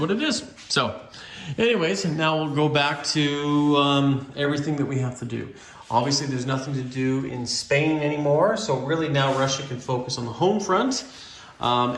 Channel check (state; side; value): identical; both; correlation 1.00